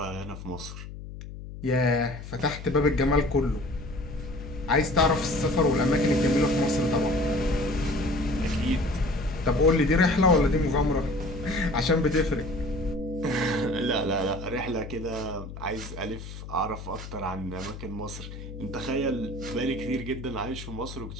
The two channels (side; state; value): left; noise; hum, 11 dB below the sound